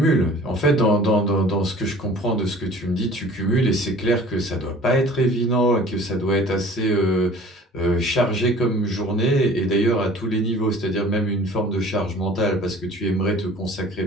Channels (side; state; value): both; normal; correlation 0.47